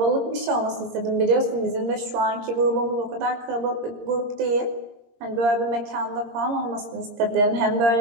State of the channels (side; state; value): left; late; 22 ms